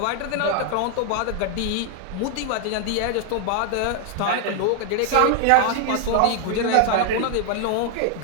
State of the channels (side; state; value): both; different; correlation 0.00